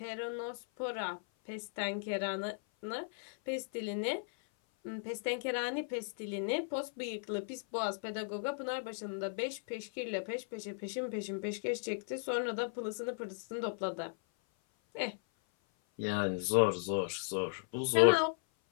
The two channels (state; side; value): silent; right; 53 dB below the other